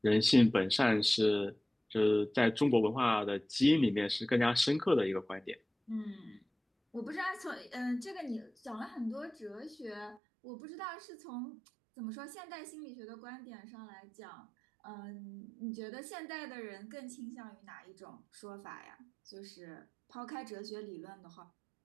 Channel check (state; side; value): drops out; left; at 10.2 s